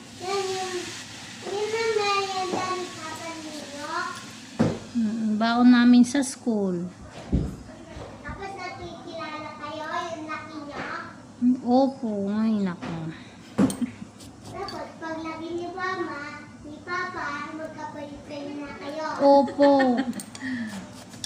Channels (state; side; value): identical; both; correlation 1.00